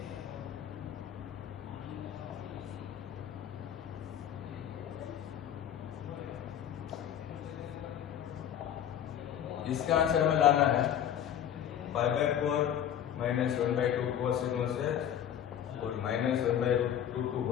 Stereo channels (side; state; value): right; quieter; 10.0 dB